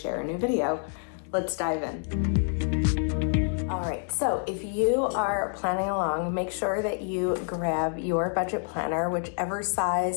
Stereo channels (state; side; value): silent; right; 60 dB below the other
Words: a new video. Let's dive in. All right, so if you are planning along, make sure that you grab your budget planner, whichever